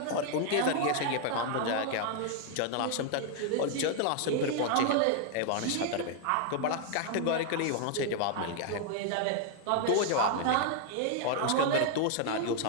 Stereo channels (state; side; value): different; both; correlation 0.00